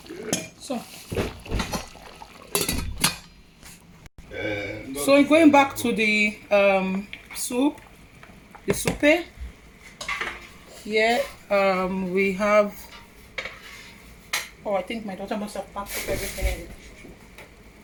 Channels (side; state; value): both; identical; correlation 1.00